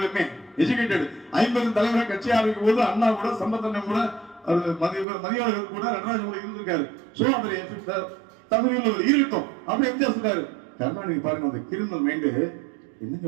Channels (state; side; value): drops out; left; at 5.1 s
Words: எஜுகேட்டட் 50 தலைவரை கட்சி ஆரம்பிக்கும் போது அண்ணா கூட சம்பத்தண்ணன் கூட மதியாளர்கள் கூட நடராஜன் கூட இருந்திருக்காரு. சோ அவர் தகுதியில் இருக்கட்டும் அப்படி எம்ஜிஆர் சொல்றாரு. கருணாநிதி பாருங்க அந்த கிரிமினல் மைண்டு என்னங்க